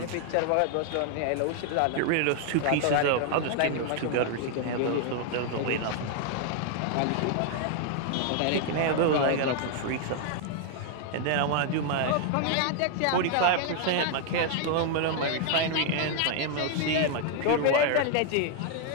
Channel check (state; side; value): different; both; correlation 0.00